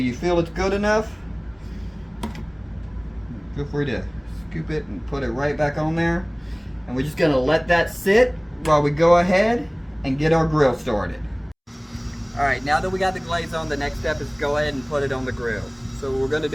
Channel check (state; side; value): identical; both; correlation 1.00